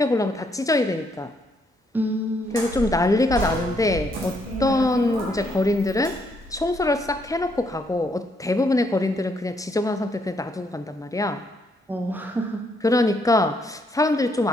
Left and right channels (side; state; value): both; normal; correlation 0.73